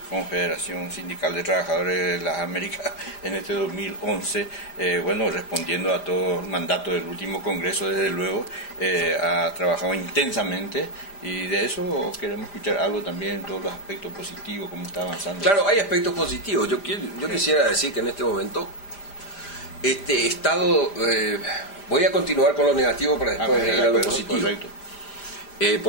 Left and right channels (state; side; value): late; right; 5.0 ms